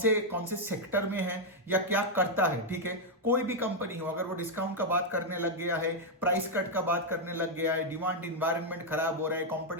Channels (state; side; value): normal; both; correlation -0.01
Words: से सेक्टर में है या क्या करता है, ठीक है। कोई भी कंपनी हो, अगर वो डिस्काउंट का बात करने लग गया है, प्राइस कट का बात करने लग गया है, डिमांड इन्वायरमेंट खराब हो रहा है,